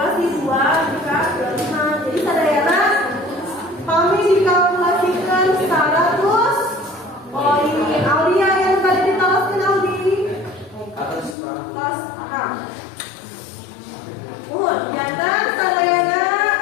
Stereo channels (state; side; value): drops out; right; at 11.4 s